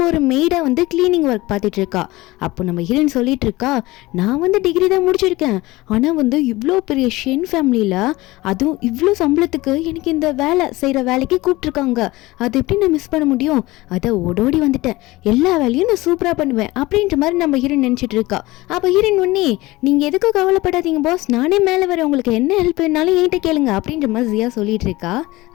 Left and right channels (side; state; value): right; quieter; 19.8 dB